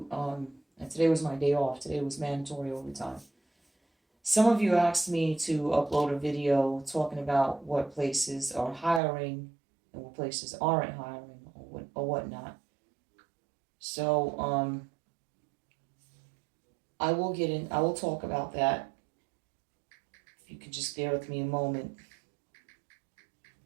And today was my day off. Today was mandatory overtime. Some of you asked me to upload a video talking about what places are hiring and what places aren't hiring or whatnot. So I will get in. I will talk about that. If you could just bear with me a moment.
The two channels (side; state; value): left; drops out; at 9.0 s